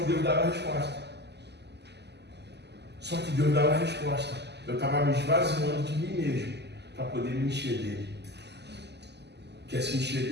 Deus dava a resposta. Eu estava me esvaziando de mim mesmo para poder me encher dele. Quer se encher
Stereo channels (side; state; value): left; late; 0.50 ms